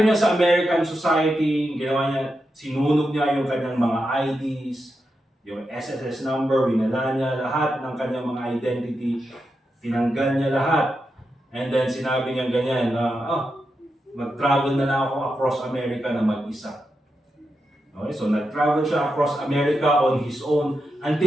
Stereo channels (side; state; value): both; normal; correlation 0.87